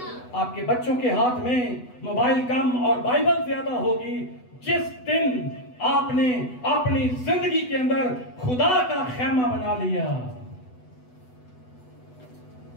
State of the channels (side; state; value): right; late; 8.0 ms